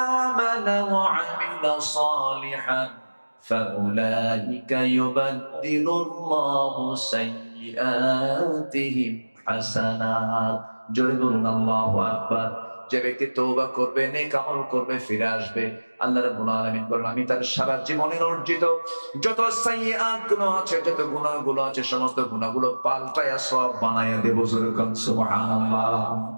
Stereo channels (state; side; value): inverted; both; correlation -1.00